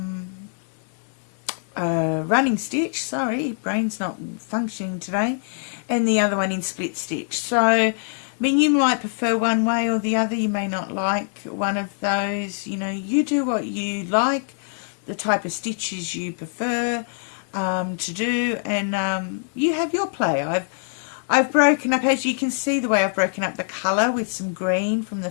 running stitch, sorry, brain's not functioning today, and the other one in split stitch. So, I mean, you might prefer one way or the other. You may not like one of those. You know, you do what you like, the type of stitches you prefer to do, and you have your play. I've broken up, as you can see, the way I've broken up the colour with some green from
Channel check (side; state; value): right; silent; 63 dB below the other